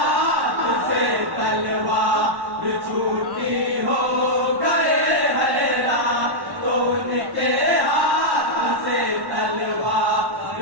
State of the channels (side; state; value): left; late; 1.1 ms